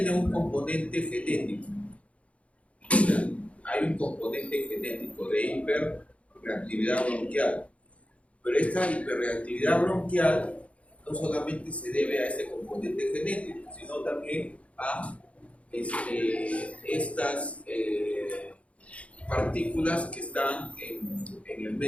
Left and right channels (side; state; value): right; late; 0.064 ms